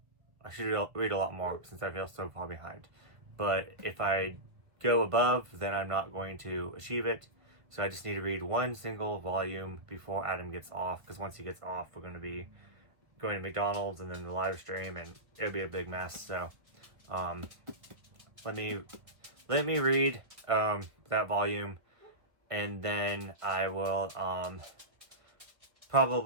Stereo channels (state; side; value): late; left; 1.2 ms